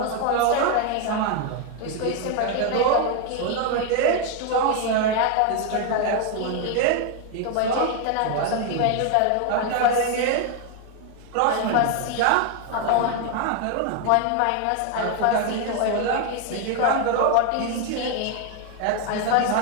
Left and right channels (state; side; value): different; both; correlation 0.01